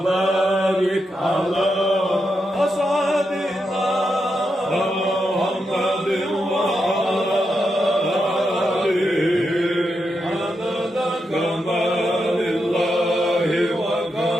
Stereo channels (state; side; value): normal; both; correlation 0.85